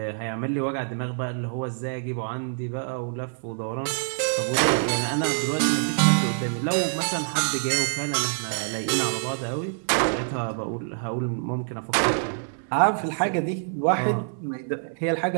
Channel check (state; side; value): silent; left; 61 dB below the other